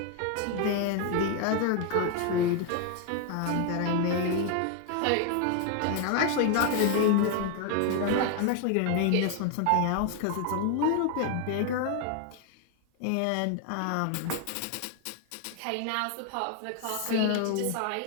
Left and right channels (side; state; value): both; different; correlation 0.01